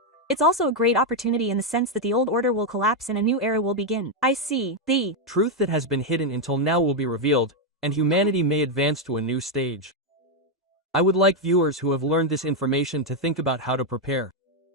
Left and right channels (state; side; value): normal; both; correlation 0.02